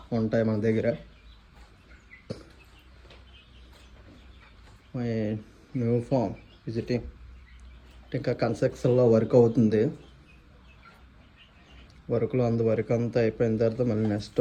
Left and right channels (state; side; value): identical; both; correlation 1.00